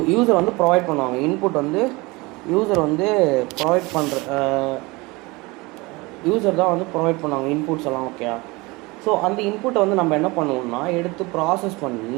யூசர் வந்து ப்ரொவைட் பண்ணுவாங்க. இன்புட் வந்து யூசர் வந்து ப்ரொவைட் பண்ணுற யூசர் தான் வந்து ப்ரொவைட் பண்ணுவாங்க இன்புட்ஸ் எல்லாம். ஓகே, ஸோ அந்த இன்புட்டை வந்து நம்ம என்ன பண்ணுவோம்னா எடுத்து ப்ராசஸ்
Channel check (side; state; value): left; quieter; 24.0 dB